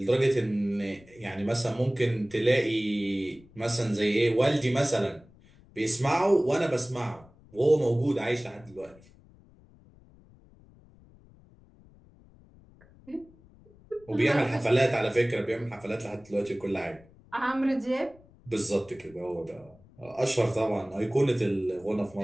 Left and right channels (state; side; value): noise; left; rumble, 26 dB below the sound